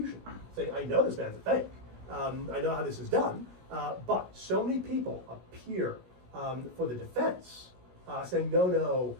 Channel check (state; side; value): late; left; 16 ms